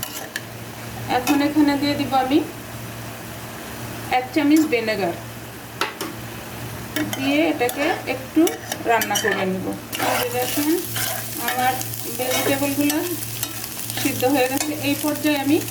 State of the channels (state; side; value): identical; both; correlation 1.00